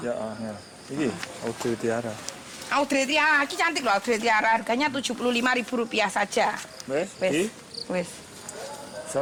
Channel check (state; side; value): identical; both; correlation 1.00